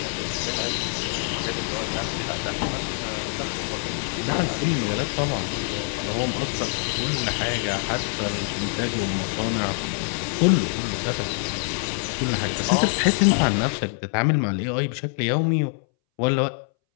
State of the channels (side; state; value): right; silent; 61 dB below the other